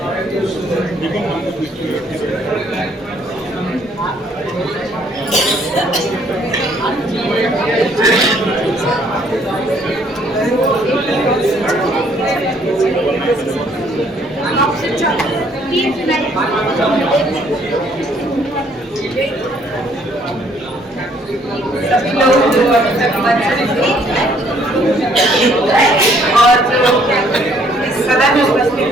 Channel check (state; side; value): normal; both; correlation 0.64